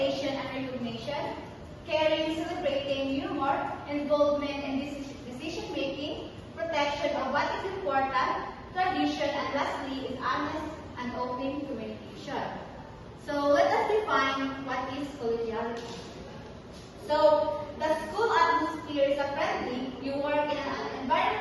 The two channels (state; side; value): identical; both; correlation 1.00